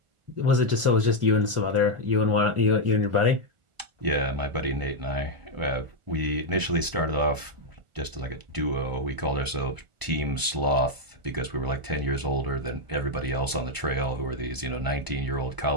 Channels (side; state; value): left; late; 1.0 ms